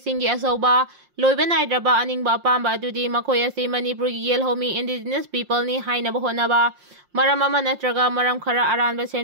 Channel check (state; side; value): late; left; 5.6 ms